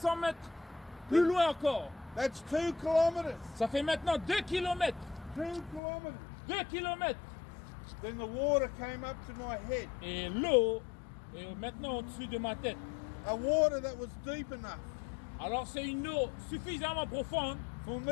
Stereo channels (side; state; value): right; drops out; at 5.8 s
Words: mètres plus loin encore. That's 2 kilometres. Ça fait maintenant 2 km. 2 kilometres. 2 km. Then the water came up to my head. Et l'eau est maintenant au-dessus de ma tête. A water that was deep enough Alors c'est une eau suffisamment profonde for